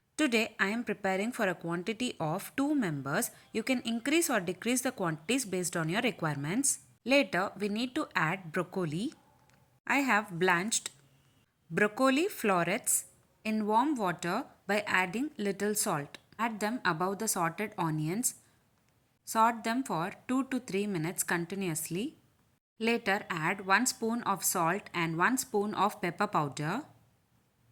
Today I am preparing for a quantity of 2 members. You can increase or decrease the quantities based on your requirements. Later we need to add broccoli. I have blanched broccoli florets in warm water by adding little salt. Add them above the sauteed onions. Saute them for 2 to 3 minutes continuously. Later add 1 spoon of salt and 1 spoon of pepper powder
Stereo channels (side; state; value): both; identical; correlation 1.00